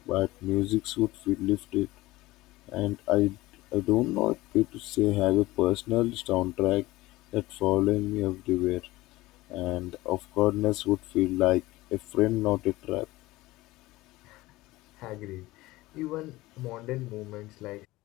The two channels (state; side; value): quieter; right; 18.8 dB